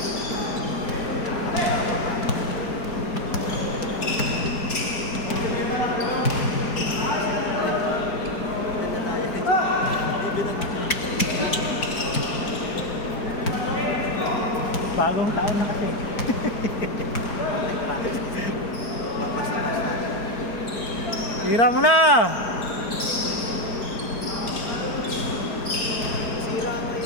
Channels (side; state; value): right; late; 4.5 ms